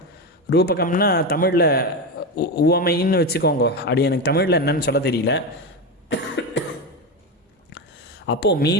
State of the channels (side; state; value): both; normal; correlation 0.16